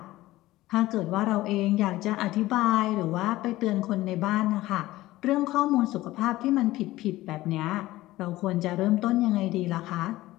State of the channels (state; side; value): quieter; right; 17.0 dB